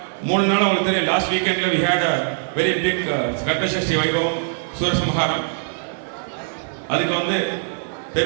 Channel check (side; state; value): left; silent; 64 dB below the other